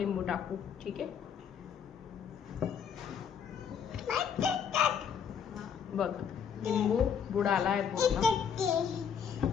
टाकू. ठीक आहे, बघ लिंबू बुडाला आहे पूर्ण.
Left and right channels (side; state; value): right; quieter; 7.5 dB